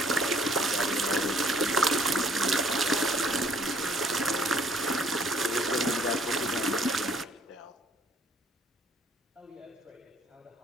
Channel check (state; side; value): normal; both; correlation 0.61